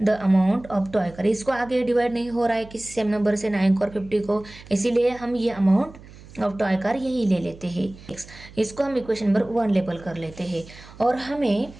the amount of toy car. इसको आगे डिवाइड नहीं हो रहा है किसी सेम नंबर से 9 और 50 को, इसीलिए हम ये अमाउंट ऑफ टॉय कार यही ले लेते हैं। इसको हम इक्वेशन नंबर 1 लेबल कर लेते हैं। और हमें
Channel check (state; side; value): noise; right; hum, 19 dB below the sound